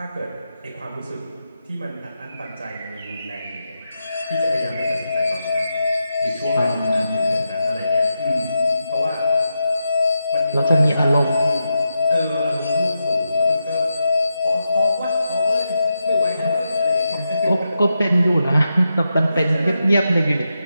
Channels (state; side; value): inverted; both; correlation -0.87